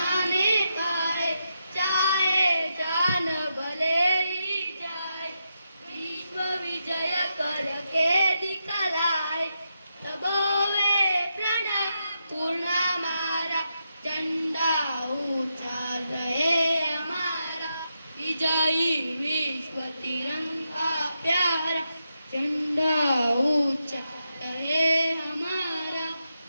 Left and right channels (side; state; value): both; inverted; correlation -0.84